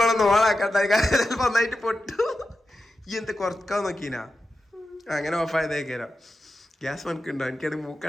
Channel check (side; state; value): both; normal; correlation 0.91